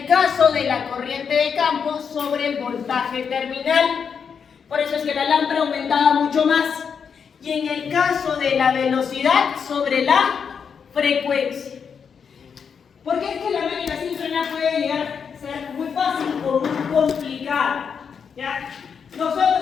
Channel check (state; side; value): quieter; right; 6.6 dB